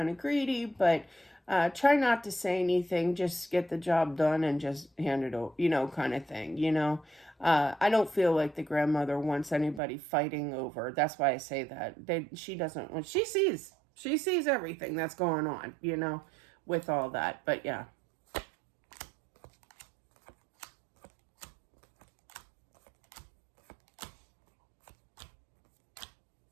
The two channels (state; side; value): drops out; left; at 9.8 s